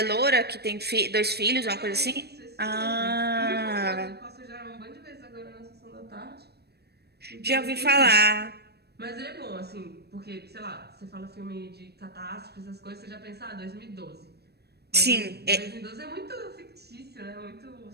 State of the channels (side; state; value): left; late; 0.47 ms